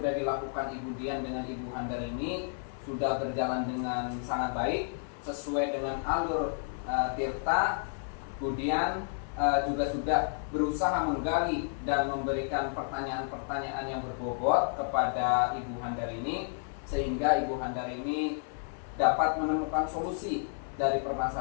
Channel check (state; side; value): silent; right; 57 dB below the other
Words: dilakukan Ibu Dian dengan Ibu Handar ini sudah berjalan dengan sangat baik, sesuai dengan alur tirta. Kemudian juga sudah berusaha menggali dan memberikan pertanyaan-pertanyaan yang berbobot kepada Ibu Handar ini, sehingga Ibu Handar ini dapat menemukan solusi dari